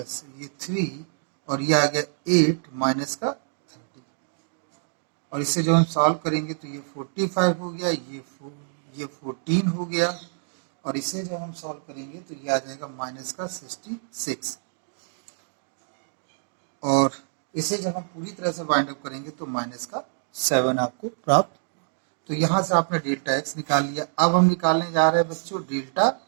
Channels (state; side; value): silent; left; digital silence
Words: ये 3 और ये आ गया 8 माइनस का 30। और इसे जब हम सॉल्व करेंगे तो ये 45 हो गया, ये 14 हो गया और इसे जब हम सॉल्व करेंगे तो ये आ जाएगा माइनस का 66। और इसे जब हम पूरी तरह से बाइंड अप करेंगे तो माइनस का 7 आपको प्राप्त। तो यहाँ से आपने डेल्टा एक्स निकाल लिया। अब हम निकालने जा रहे हैं बच्चों डेल्टा